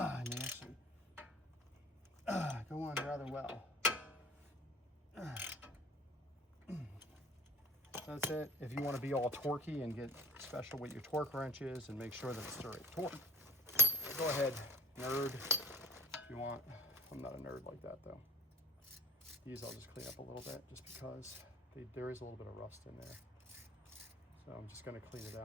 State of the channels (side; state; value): both; normal; correlation 0.44